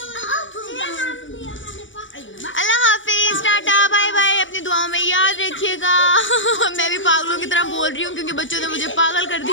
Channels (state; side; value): late; right; 0.56 ms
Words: अल्लाह हाफिज, टाटा बाय बाय, अपनी दुआओं में याद रखिएगा। मैं भी पागलों की तरह बोल रही हूँ क्योंकि बच्चों ने मुझे पागल कर